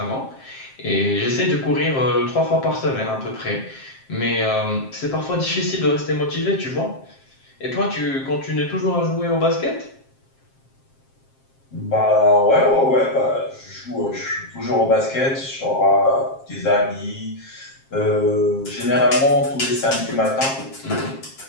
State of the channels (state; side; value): late; right; 7.5 ms